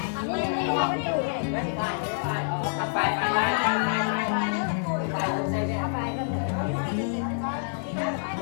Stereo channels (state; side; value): silent; right; 60 dB below the other